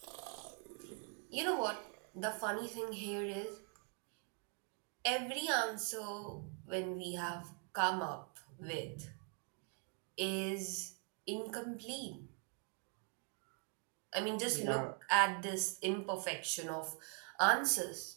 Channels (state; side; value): quieter; left; 38.5 dB